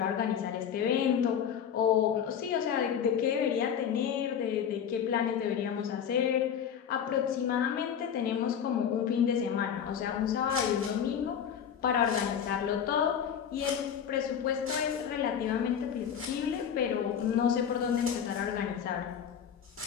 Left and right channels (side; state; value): right; quieter; 8.3 dB